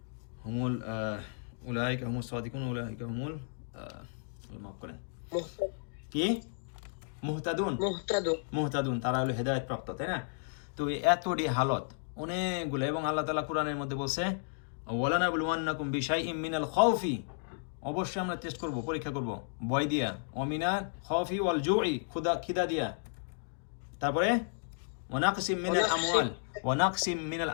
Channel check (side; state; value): right; silent; digital silence